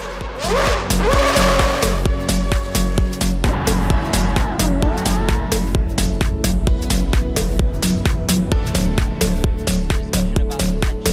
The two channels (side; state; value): both; identical; correlation 1.00